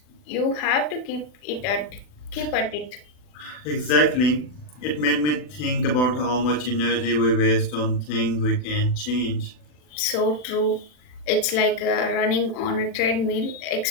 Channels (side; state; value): right; late; 40 ms